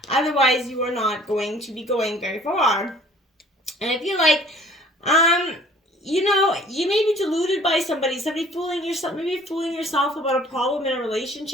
Otherwise, you are not going to be going very far. And I feel like, you may be deluded by somebody fooling yourself about a problem in a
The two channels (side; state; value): both; normal; correlation 0.53